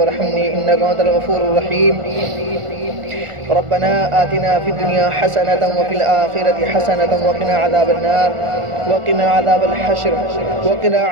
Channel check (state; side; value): late; left; 1.4 ms